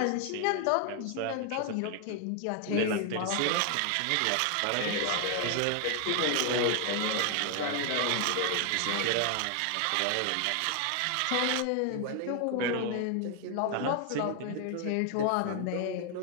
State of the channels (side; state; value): both; different; correlation 0.00